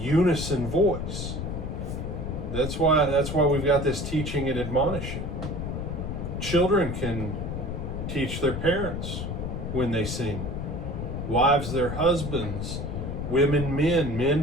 voice. That's why we've got this teaching and admonishing. Children can teach their parents when they sing. Wives their husbands. Women men.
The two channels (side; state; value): left; noise; rumble, 4 dB below the sound